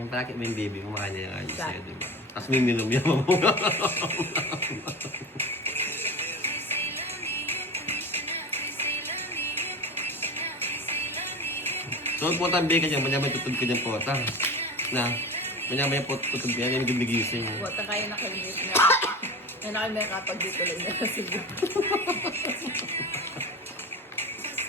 akit mo yung baby mo, makanya yung ayos Sa- sa'yo, di ba? Tapos may minum yan mo. So, putang bigay ka dyan, manya may tutug ka dyan pota. Na, manya may tutug ka dyan, yung gigising. Wata kayo na kayo na. Yan na kayo may kapag dito lang na. Sige.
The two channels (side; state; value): both; normal; correlation 0.31